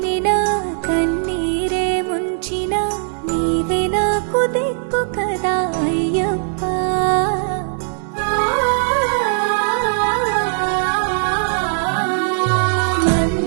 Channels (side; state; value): left; silent; 67 dB below the other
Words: కన్నీరే ముంచినా నీవే నాకు దిక్కు కదా అయ్యప్ప